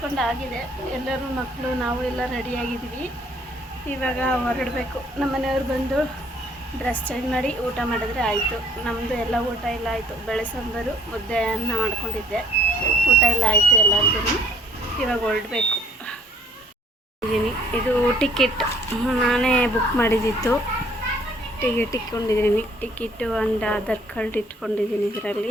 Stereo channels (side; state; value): both; normal; correlation 0.60